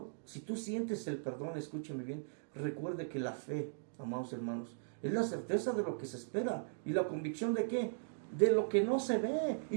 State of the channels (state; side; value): silent; left; digital silence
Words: si tú sientes el perdón, escúcheme bien, recuerde que la fe, amados hermanos, es la certeza de lo que se espera. ¿Y la convicción de qué? De lo que no se ve.